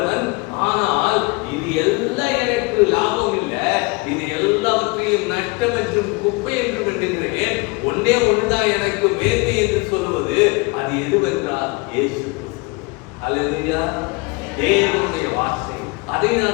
ஆனால் இது எல்லாம் எனக்கு லாபம் இல்லை, இது எல்லாவற்றையும் நஷ்டம் என்றும் குப்பை என்றும் என்கிறேன். ஒன்னே ஒன்றுதான் எனக்கு மேன்மை என்று சொல்வது. அது எதுவென்றால் இயேசு கிறிஸ்து. அல்லேலூயா. தேவனுடைய வார்த்தை, அதை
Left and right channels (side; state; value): right; quieter; 27.3 dB